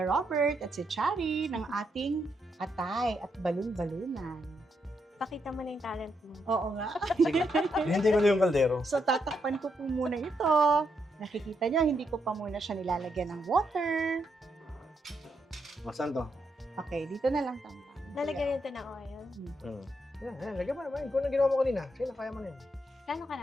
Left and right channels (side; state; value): both; normal; correlation 0.79